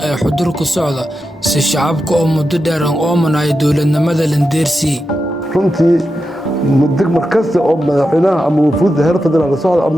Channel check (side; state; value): both; normal; correlation 0.89